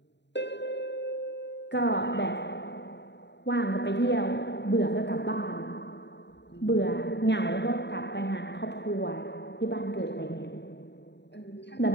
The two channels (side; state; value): right; late; 0.51 ms